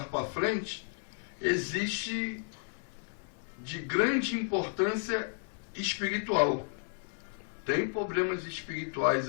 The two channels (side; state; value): right; silent; 56 dB below the other